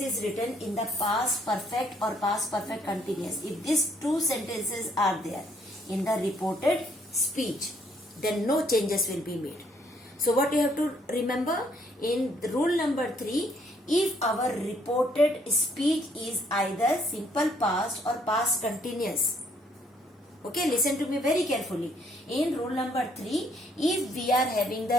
written in the past perfect or past perfect continuous, if these two sentences are there in the reported speech, then no changes will be made. So what you have to remember in rule number 3, if our reported speech is either simple past or past continuous. Okay, listen to me very carefully. In rule number 3, if we are having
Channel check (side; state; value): both; normal; correlation 0.67